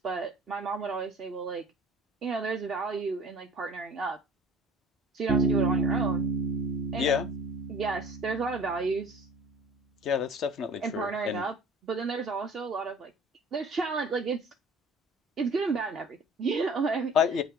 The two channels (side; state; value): both; normal; correlation 0.45